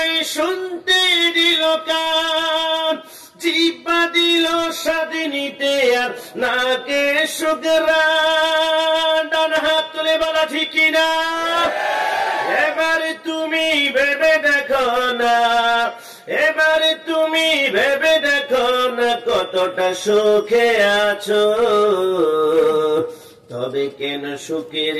শুনতে দিল কান, জিহ্বা দিল স্বাদ নিতে আর নাকে সুঘ্রাণ। ডান হাত তুলে বলা ঠিক না? এবার তুমি ভেবে দেখো না, এবার তুমি ভেবে দেখো না কতটা সুখে আছো। তবে কেন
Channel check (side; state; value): both; identical; correlation 1.00